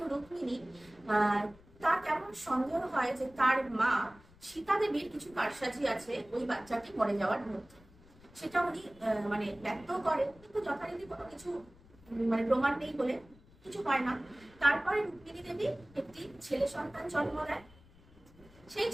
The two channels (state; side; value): noise; left; rumble, 25 dB below the sound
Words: রুক্মিণী, তার কেমন সন্দেহ হয় যে তার মা সীতা দেবীর কিছু কারসাজি আছে ওই বাচ্চাটি মরে যাওয়ার মধ্যে। সেটা উনি মানে ব্যক্ত করেন, কিন্তু যথারীতি কোনো কিছু মানে প্রমাণ নেই বলে কিছু হয় না। তারপরে রুক্মিণী দেবী একটি ছেলে সন্তান জন্ম দেয়। সেই